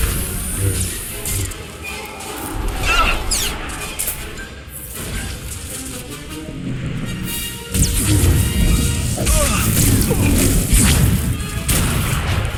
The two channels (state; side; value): identical; both; correlation 1.00